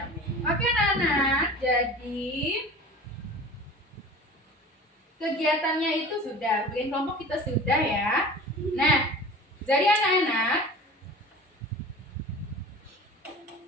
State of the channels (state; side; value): normal; both; correlation 0.39